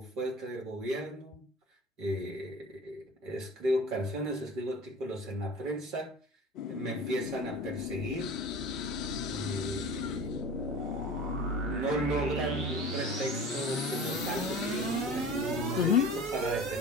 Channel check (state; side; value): normal; both; correlation 0.38